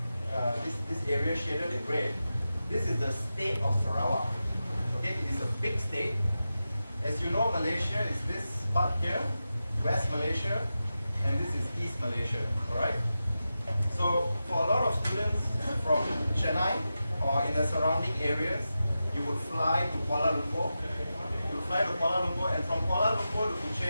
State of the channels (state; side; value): inverted; both; correlation -0.91